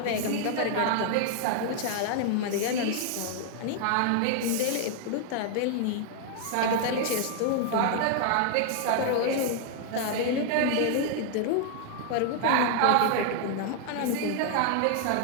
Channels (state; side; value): different; both; correlation 0.00